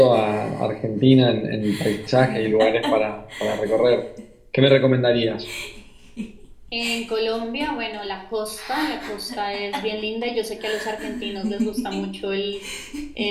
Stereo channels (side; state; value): both; identical; correlation 1.00